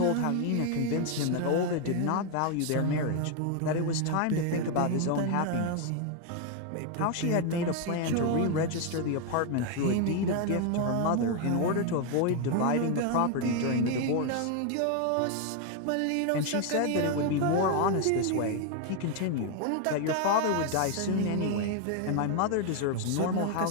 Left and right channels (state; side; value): different; both; correlation 0.01